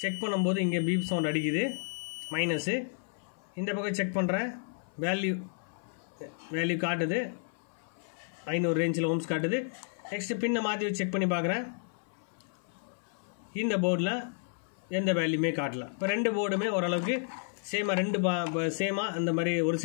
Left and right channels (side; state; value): right; silent; 57 dB below the other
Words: செக் பண்ணும்போது இங்கே பீப் சவுண்ட் அடிக்குது, மைனஸு. இந்த பக்கம் செக் பண்ணுறேன், வேல்யூ காட்டுது, 500 ரேஞ்சில் ஓம்ஸ் காட்டுது. நெக்ஸ்ட்டு பின்னை மாற்றி வச்சு செக் பண்ணி பார்க்குறேன். இந்த போர்டில் எந்த வேல்யூமே காட்டல. இப்போ ரெண்டு போர்டுமே ஓரளவுக்கு சேமாக, சேமாக அந்த மாதிரி ஒரு